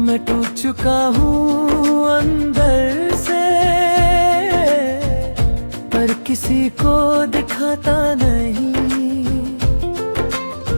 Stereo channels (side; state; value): both; inverted; correlation -1.00